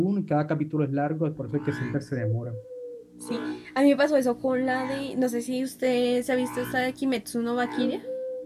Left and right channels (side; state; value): both; identical; correlation 1.00